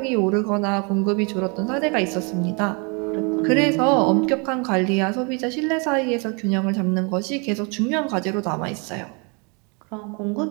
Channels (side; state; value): left; quieter; 33.0 dB